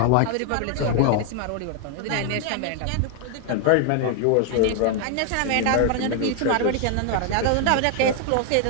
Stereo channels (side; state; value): both; different; correlation 0.00